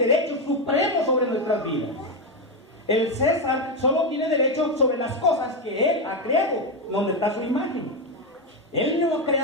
supremo sobre nuestras vidas. El César solo tiene derecho sobre las cosas que Él ha creado, donde está su imagen. Él no ha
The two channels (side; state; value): both; normal; correlation 0.08